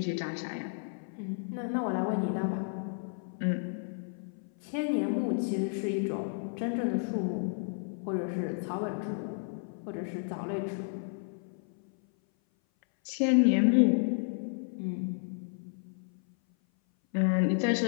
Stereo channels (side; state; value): right; silent; 56 dB below the other